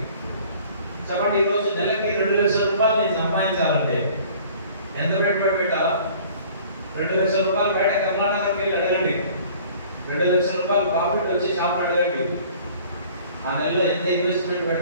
చెప్పండి, ఈరోజు నెలకి ₹2,00,000 నేను సంపాదించాలంటే ఎంత పెట్టుబడి పెట్టాలా? ₹2,00,000 బయట కర్ణాటకకి వెళ్ళి అడగండి, ₹2,00,000 ప్రాఫిట్ వచ్చి షాప్ అడగండి. ఆ నెలలో ఎంత ఇన్వెస్ట్మెంట్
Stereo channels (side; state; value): both; inverted; correlation -0.50